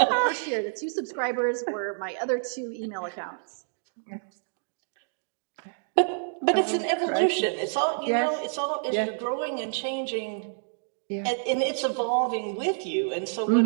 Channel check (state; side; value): silent; left; digital silence